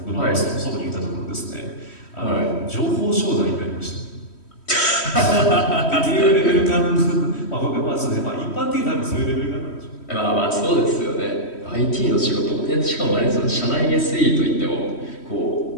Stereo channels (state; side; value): late; right; 3.1 ms